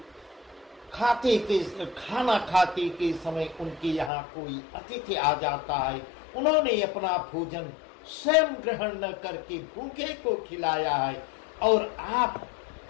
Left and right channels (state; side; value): drops out; right; at 4.1 s